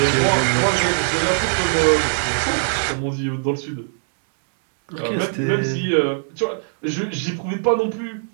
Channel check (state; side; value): silent; left; digital silence